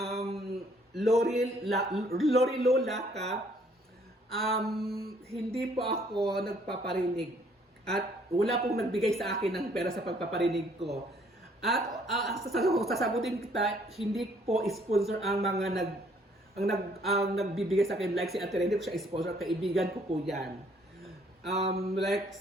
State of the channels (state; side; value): normal; both; correlation 0.63